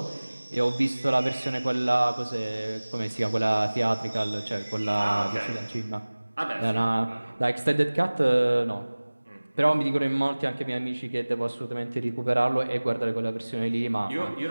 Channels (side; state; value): both; inverted; correlation -1.00